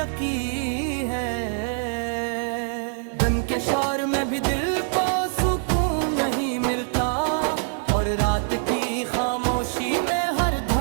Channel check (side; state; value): left; silent; digital silence